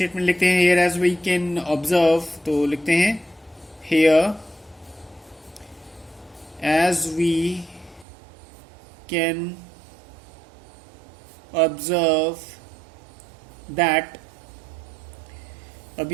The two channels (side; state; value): left; drops out; at 8.1 s